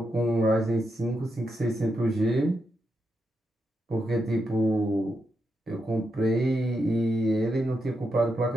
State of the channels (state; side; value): normal; both; correlation 0.84